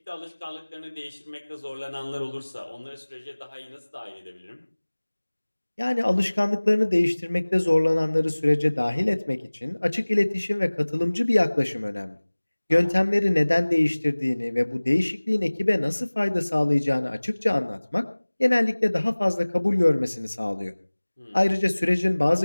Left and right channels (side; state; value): both; inverted; correlation -1.00